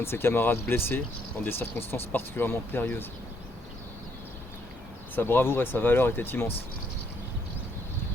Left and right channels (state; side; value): normal; both; correlation 0.71